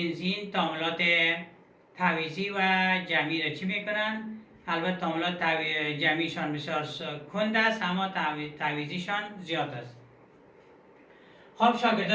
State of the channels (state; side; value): identical; both; correlation 1.00